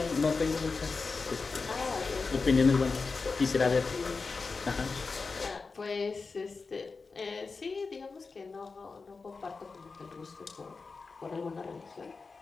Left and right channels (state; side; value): quieter; right; 4.4 dB